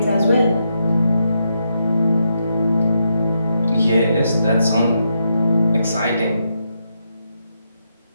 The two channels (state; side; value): inverted; both; correlation -0.81